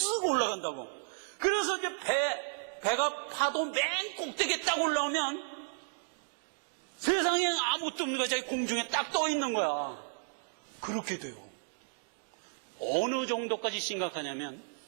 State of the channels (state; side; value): silent; left; digital silence